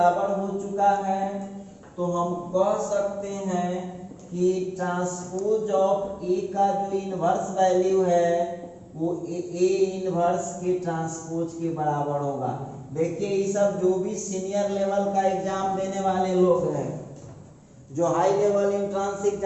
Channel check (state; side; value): identical; both; correlation 1.00